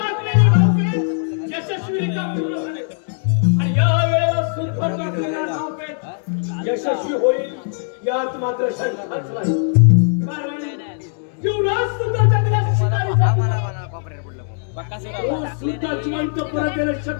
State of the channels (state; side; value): silent; right; digital silence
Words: डावपेच यशस्वीरित्या पूर्ण झाले आणि या वेळेला सुद्धा टाकलेला डावपेच यशस्वी होईल यात मात्र शंकाच नाही. कारण युवराज सुद्धा जंगलात शिकारी झाला. तो सुद्धा जिवंत परत येणं